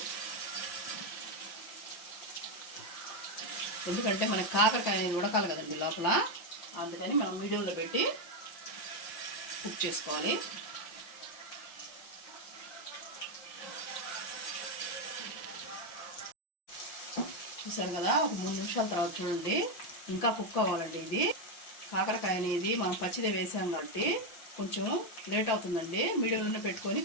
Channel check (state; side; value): late; right; 5.9 ms